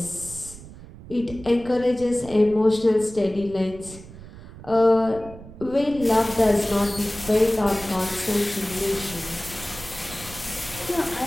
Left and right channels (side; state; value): right; noise; rumble, 16 dB below the sound